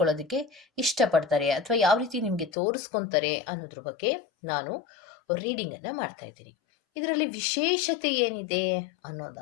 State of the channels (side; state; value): right; drops out; at 2.5 s